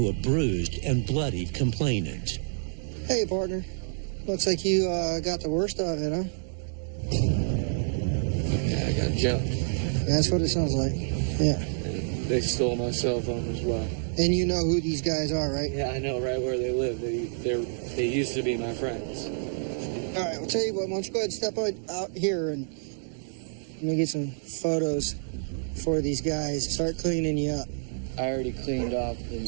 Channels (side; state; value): left; silent; digital silence